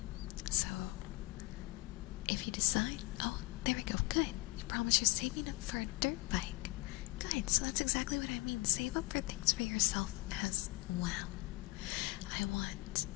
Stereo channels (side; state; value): right; quieter; 22.3 dB